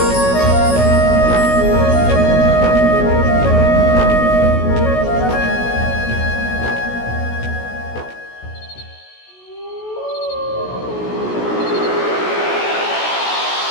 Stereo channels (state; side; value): late; right; 16 ms